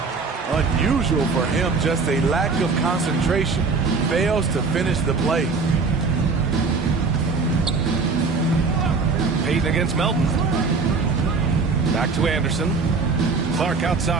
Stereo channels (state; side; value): quieter; left; 4.4 dB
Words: Unusual for him, just a lack of concentration. Fails to finish the play. Payton against Melton. Back to Anderson. Clark